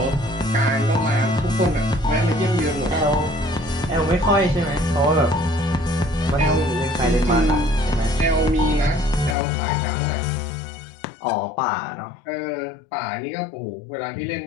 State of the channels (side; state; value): right; drops out; at 9.3 s